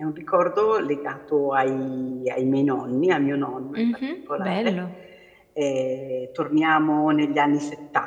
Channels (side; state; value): both; identical; correlation 1.00